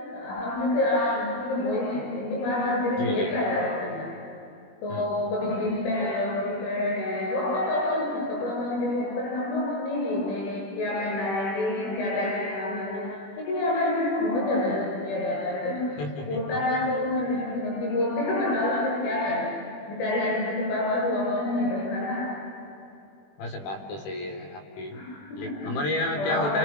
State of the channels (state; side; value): late; right; 21 ms